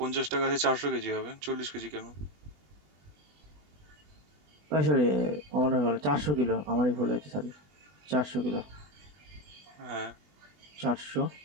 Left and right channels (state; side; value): late; left; 20 ms